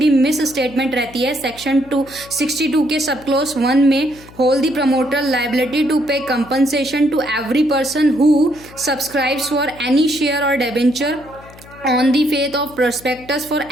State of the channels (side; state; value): left; noise; hum, 21 dB below the sound